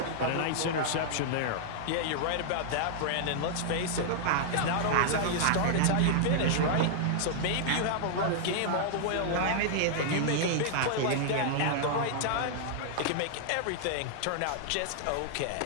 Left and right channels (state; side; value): different; both; correlation -0.01